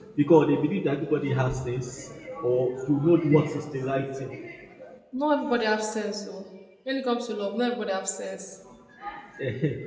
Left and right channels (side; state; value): both; identical; correlation 1.00